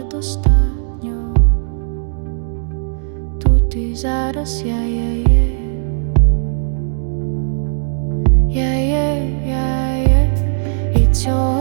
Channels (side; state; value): left; silent; 68 dB below the other